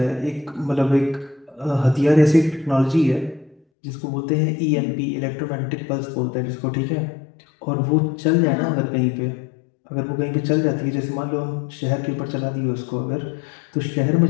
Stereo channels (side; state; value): right; drops out; at 3.6 s